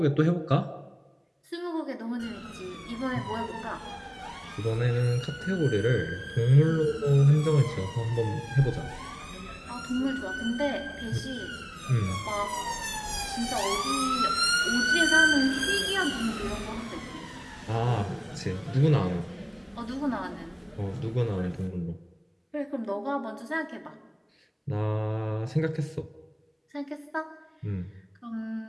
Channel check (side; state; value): both; identical; correlation 1.00